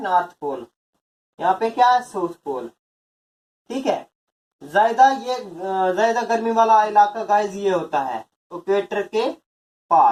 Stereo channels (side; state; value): both; identical; correlation 1.00